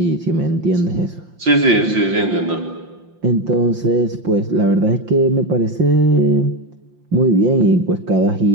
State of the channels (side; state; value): left; late; 5.7 ms